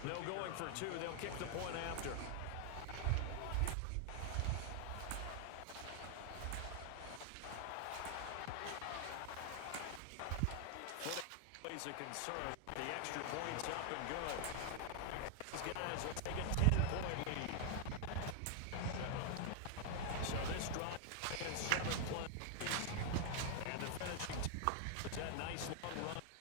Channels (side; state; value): both; different; correlation 0.00